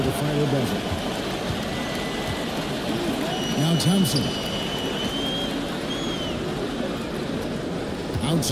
the final buzzer. Now Thompson.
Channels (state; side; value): identical; both; correlation 1.00